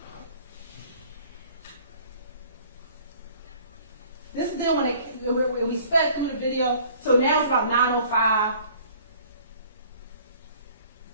This is them when we sped through the video. So now it's about 9:05.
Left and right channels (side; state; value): both; inverted; correlation -0.53